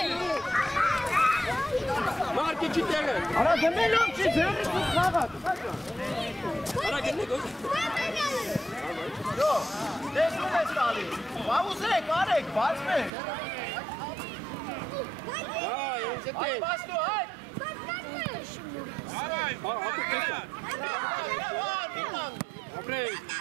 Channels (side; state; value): left; drops out; at 13.1 s